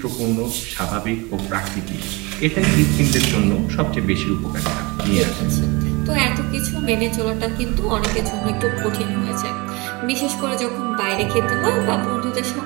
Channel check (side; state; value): left; quieter; 25.9 dB